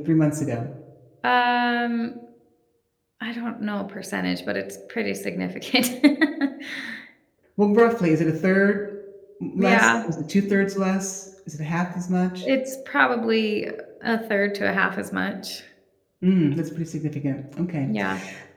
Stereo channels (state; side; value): identical; both; correlation 1.00